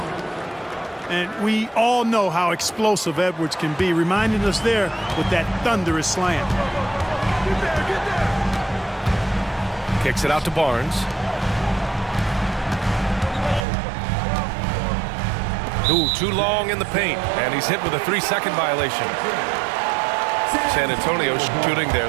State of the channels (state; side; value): drops out; left; at 13.7 s